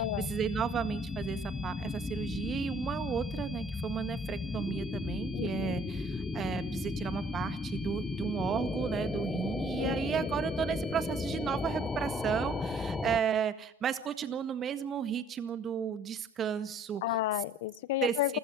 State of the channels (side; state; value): both; normal; correlation 0.59